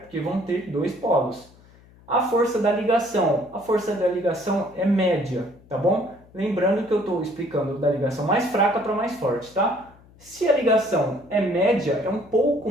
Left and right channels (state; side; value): noise; left; hum, 26 dB below the sound